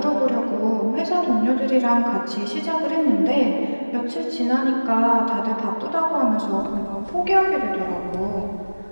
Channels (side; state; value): both; inverted; correlation -1.00